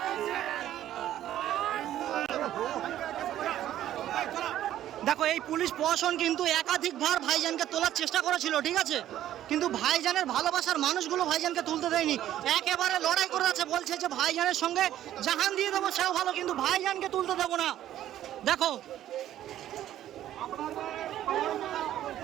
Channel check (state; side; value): quieter; left; 12.3 dB